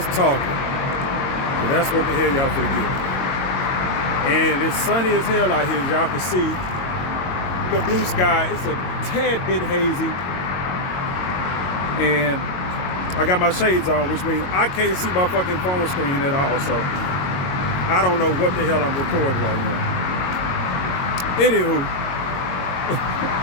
talking. But that's what the hell y'all finna get. And it's sunny as hell out here, as y'all can see. The blue sky, it's a tad bit hazy. And I got my shades on, which means I can't see my fucking phone screen at all, so I don't know what the hell I'm recording right now. Anywho,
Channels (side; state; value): right; late; 22 ms